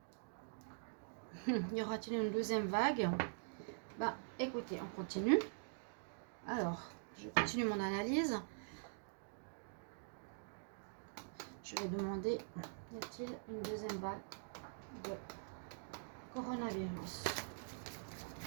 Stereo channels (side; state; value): left; silent; digital silence